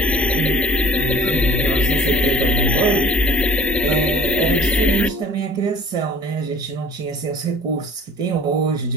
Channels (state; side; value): normal; both; correlation 0.50